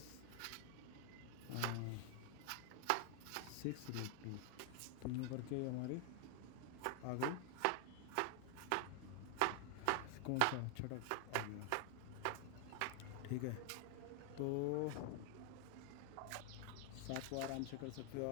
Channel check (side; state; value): both; different; correlation 0.00